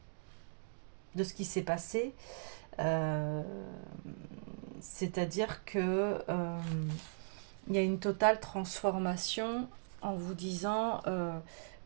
de ce qui s'est passé. Euh, C'est-à-dire que il y a une totale transformation en vous disant,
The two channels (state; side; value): silent; left; digital silence